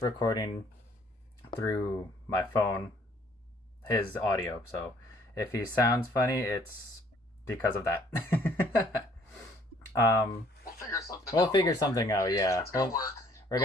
through my phone his audio. So if he sounds funny, it's because of that. um, We'll figure something we'll out. figure Don't worry. something out, yeah. It's gonna work. We're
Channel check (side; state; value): both; normal; correlation 0.60